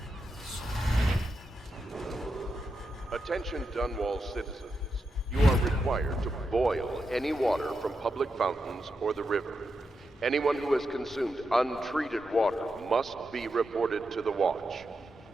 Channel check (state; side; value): normal; both; correlation 0.86